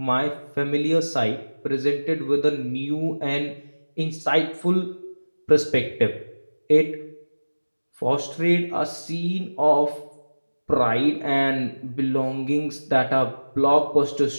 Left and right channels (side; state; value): both; inverted; correlation -1.00